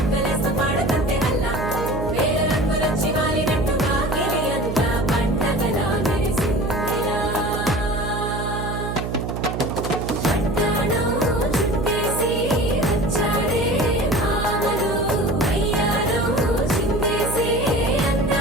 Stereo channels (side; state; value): right; noise; hum, 4 dB below the sound